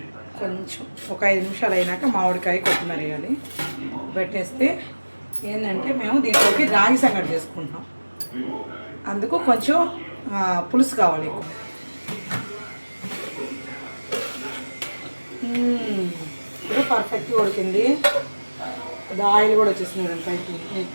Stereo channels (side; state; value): both; inverted; correlation -1.00